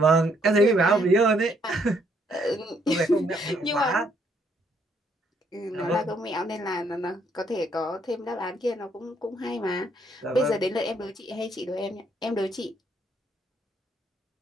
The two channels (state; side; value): normal; both; correlation 0.70